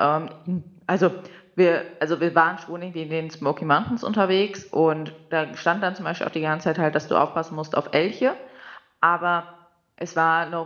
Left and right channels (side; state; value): both; identical; correlation 1.00